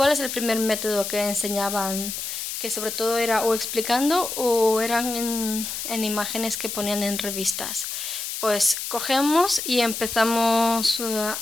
es el primer método que enseñaban? Que sobre todo era o explicando o eran en imágenes que ponían en revistas. Pues cogemos y empezamos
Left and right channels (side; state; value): left; noise; hiss, 5 dB below the sound